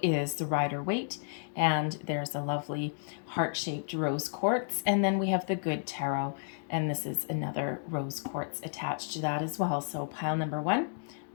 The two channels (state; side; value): silent; right; digital silence